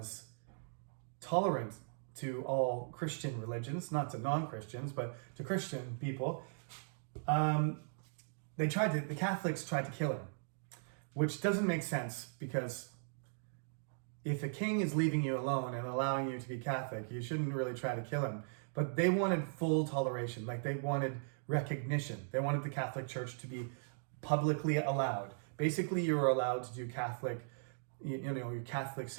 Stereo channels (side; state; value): left; silent; digital silence